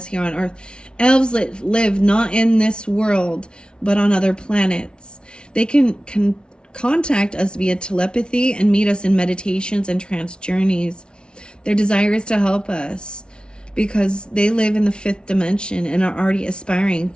here on Earth. Elves live not in this world, but on other planets. They can contact us via telepathy and meet us in meditations and trance journeys. Their desire is to help us because they live in the fifth dimension and are already aspiring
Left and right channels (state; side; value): late; right; 0.056 ms